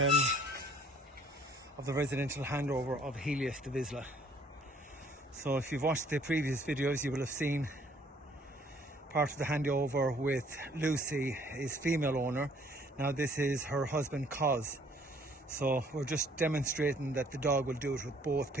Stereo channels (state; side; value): normal; both; correlation 0.59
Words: of the residential handover of Helios to Vizsla. So if you've watched the previous videos, you will have seen part of the handover with Lucy, his female owner. Now this is her husband, Cos. So we're just demonstrating that the dog will do it with both